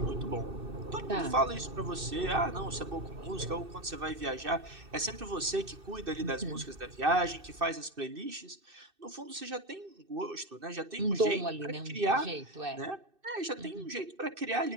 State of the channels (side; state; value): left; late; 2.6 ms